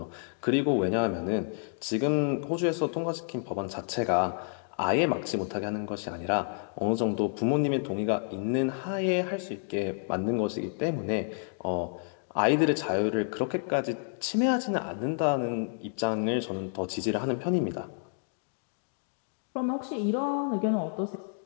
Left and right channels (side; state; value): right; silent; digital silence